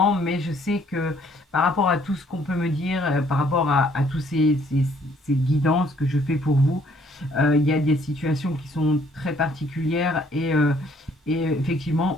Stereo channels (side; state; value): both; normal; correlation 0.63